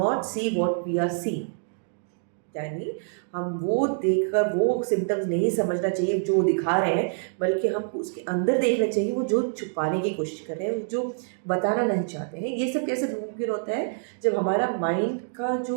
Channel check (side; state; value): left; silent; digital silence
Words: see what we are seeing, यानी हम वो देखकर वो सिम्टम्स नहीं समझना चाहिए जो दिखा रहे हैं, बल्कि हमको उसके अंदर देखना चाहिए वो जो छुपाने की कोशिश कर रहे हैं, जो बताना नहीं चाहते हैं। ये सब कैसे मुमकिन होता है, जब हमारा माइंड का